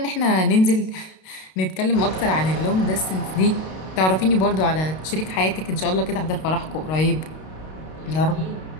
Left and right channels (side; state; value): right; late; 32 ms